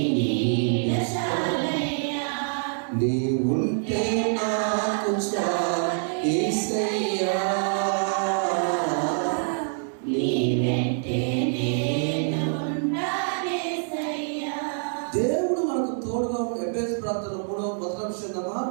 నీడ చాలయ్యా, నీ ఉంటే నాకు చాలు యేసయ్యా, నీ వెంటే నేను ఉంటానేసయ్యా. దేవుడు మనకు తోడుగా ఉండే ఎబ్బేసు ప్రార్థన 3వ చెందమా,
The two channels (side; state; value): left; silent; digital silence